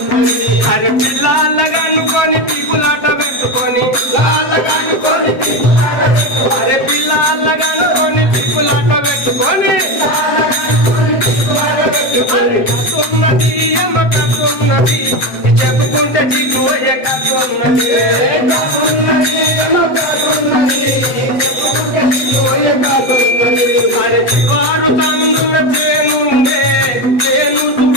అరే పిల్లలగనుకొని పీపులాట పెట్టుకొని అరే పిల్లలగనుకొని పీపులాట పెట్టుకొని కాకున్నది అమ్మ కాకున్నది చెప్పుకుంటే చిగోయ కాకున్నది అరే చివారు కన్నుల తేనుండే తేను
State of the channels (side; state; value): right; late; 7.9 ms